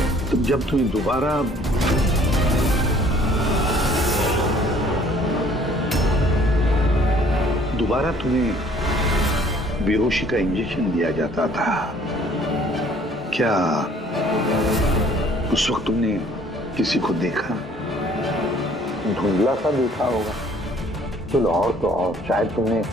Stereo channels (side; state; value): both; normal; correlation 0.57